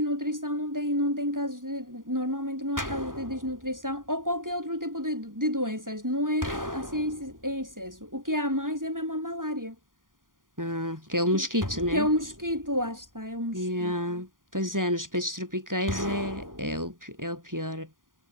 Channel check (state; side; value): late; left; 0.90 ms